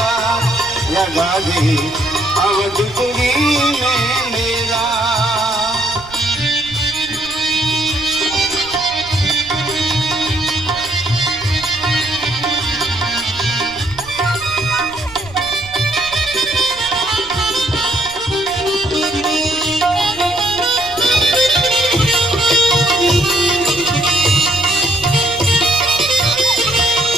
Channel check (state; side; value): noise; right; rumble, 20 dB below the sound